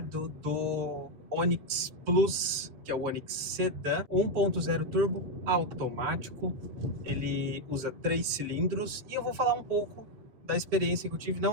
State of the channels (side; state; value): left; late; 7.6 ms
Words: do Onix Plus, que é o Onix Sedan 1.0 turbo automático. Ele usa 3 cilindros e eu vou falar um pouco da experiência que eu tive.